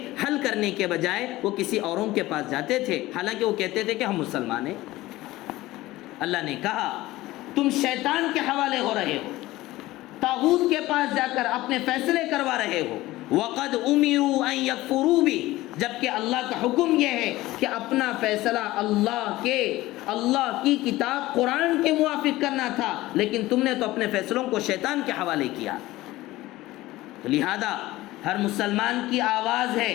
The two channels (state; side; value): quieter; right; 17.7 dB